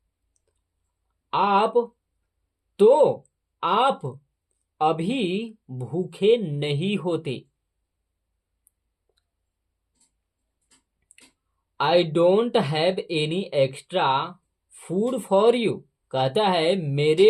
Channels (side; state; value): both; identical; correlation 1.00